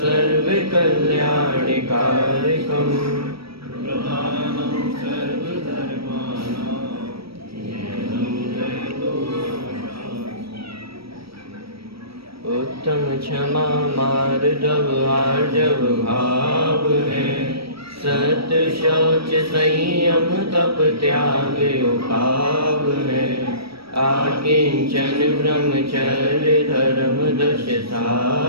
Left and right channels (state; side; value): late; left; 0.76 ms